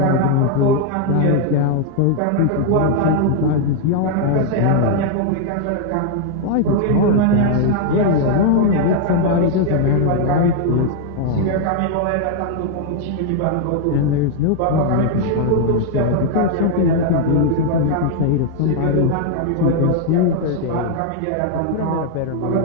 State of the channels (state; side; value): different; both; correlation 0.00